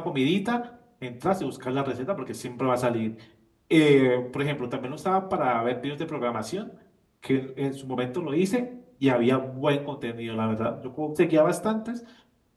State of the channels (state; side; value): identical; both; correlation 1.00